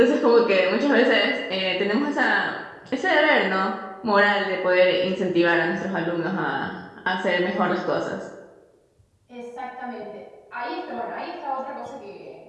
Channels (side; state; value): both; identical; correlation 1.00